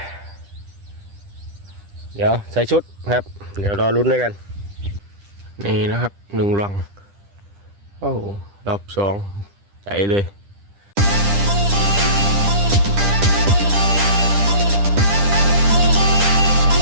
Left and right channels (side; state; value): left; late; 10 ms